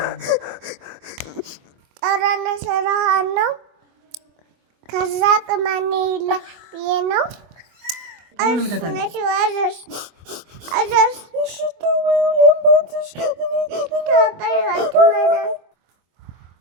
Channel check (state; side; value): late; left; 24 ms